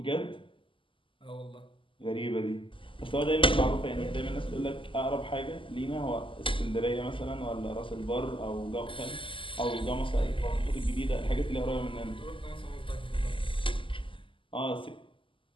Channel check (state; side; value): late; right; 0.25 ms